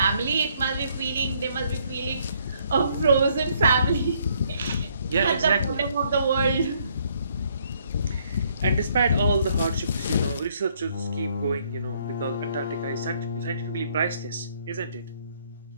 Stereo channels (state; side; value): inverted; both; correlation -0.67